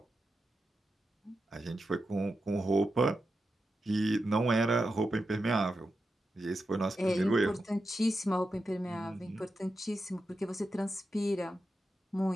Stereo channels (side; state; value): both; normal; correlation 0.89